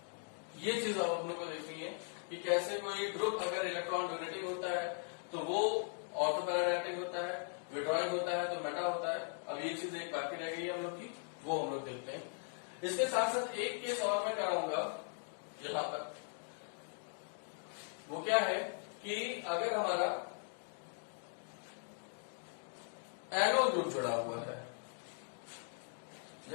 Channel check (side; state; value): right; silent; 51 dB below the other